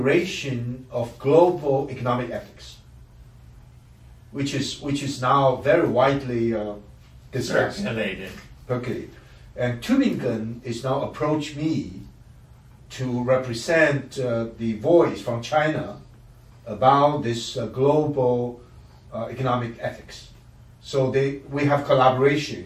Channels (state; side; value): identical; both; correlation 1.00